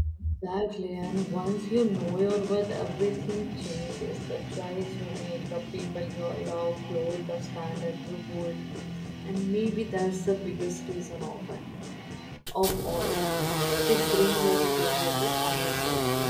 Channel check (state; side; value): identical; both; correlation 1.00